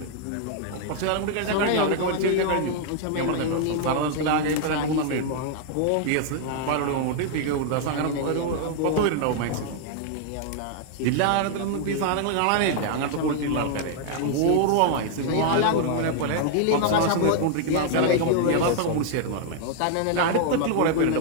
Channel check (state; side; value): different; both; correlation 0.00